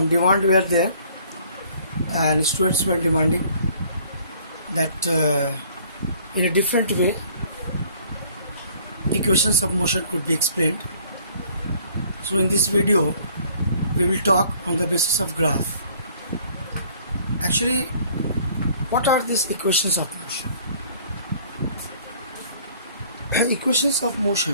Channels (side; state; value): both; inverted; correlation -0.57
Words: demand were there, and students were demanding that in a different way equations of motion could be explained. So in this video we will talk on the basis of graph. Actually, what are these equations of motion? Equations of